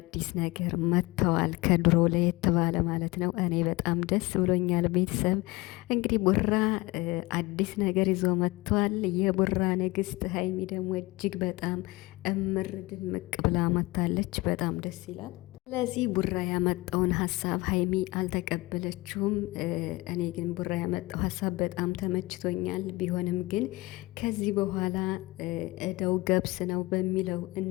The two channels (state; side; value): quieter; right; 22.0 dB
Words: ነገር መጥተዋል። ከድሮ ለየት ባለ ማለት ነው። እኔ በጣም ደስ ብሎኛል። ቤተሰብ እንግዲህ ቡራ አዲስ ነገር ይዞ መጥተዋል። የቡራ ንግስት ሀይሚ ደግሞ እጅግ በጣም እምር ድምቅ ብላ መታለች። በጣም ደስ ይላል። ስለዚህ ቡራ ያመጣውን ሀሳብ ሀይሚ አልተቀበለችውም። እኔ ግን ቡራ ያመጣው ሀሳብ በጣም ተመችቶኛል። ቢሆንም ግን ከዚህ በኋላ እዳው ገብስ ነው በሚለው